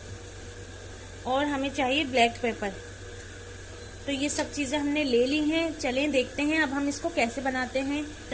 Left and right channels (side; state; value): both; identical; correlation 1.00